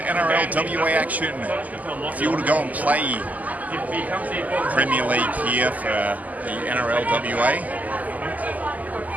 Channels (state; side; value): late; left; 0.078 ms